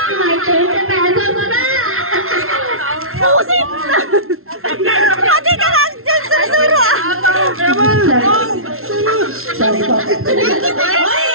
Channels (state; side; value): late; left; 0.62 ms